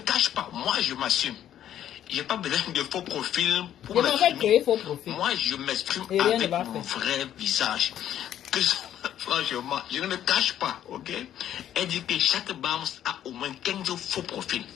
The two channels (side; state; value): right; quieter; 11.0 dB